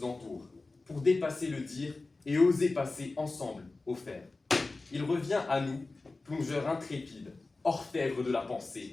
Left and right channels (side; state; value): right; quieter; 3.4 dB